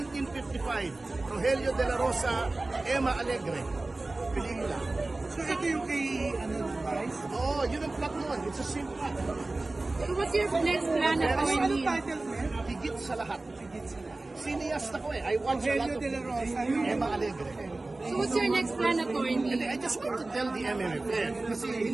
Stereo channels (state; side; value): quieter; left; 3.1 dB